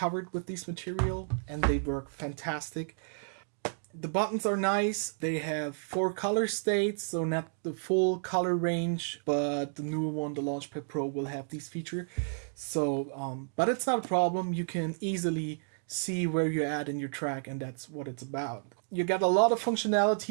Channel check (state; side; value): silent; left; digital silence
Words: with this material, and they work fantastic. The buttons are nice. They have 4 color states, so not the full color range, but the newer one, the Launchpad Pro, will have these features. So, but it's not a problem. You can easily see where you're at in your track, and that's what it's about. You got a lot of